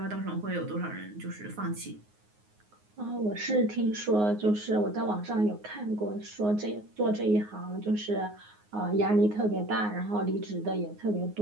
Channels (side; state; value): left; late; 9.5 ms